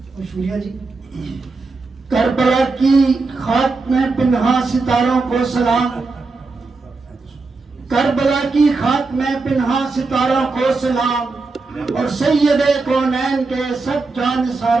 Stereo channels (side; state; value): left; quieter; 3.9 dB